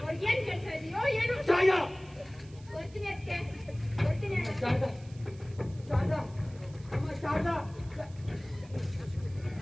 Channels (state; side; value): noise; right; hiss, 25 dB below the sound